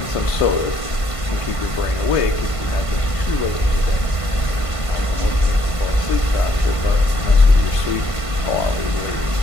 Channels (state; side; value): late; right; 1.5 ms